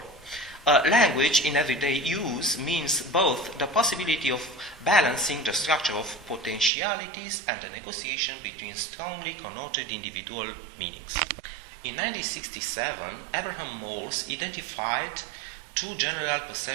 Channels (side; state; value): left; drops out; at 6.7 s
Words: language in everyday use means both the possibility of balancing the structure of potentialities and the negotiation between strongly connoted individual meanings. In 1967, Abraham Morse identified two general